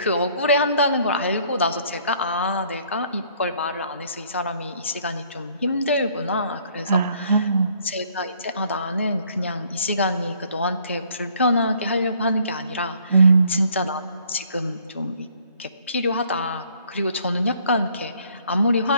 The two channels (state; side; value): inverted; both; correlation -0.62